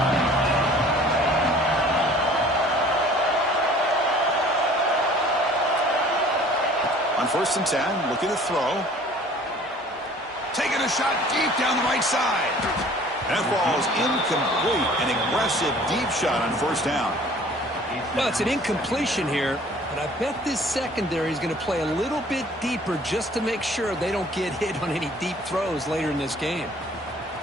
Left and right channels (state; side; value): normal; both; correlation 0.51